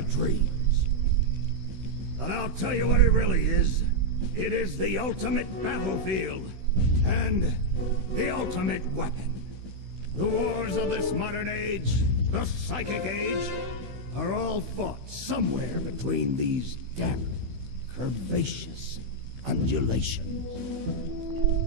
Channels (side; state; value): left; late; 16 ms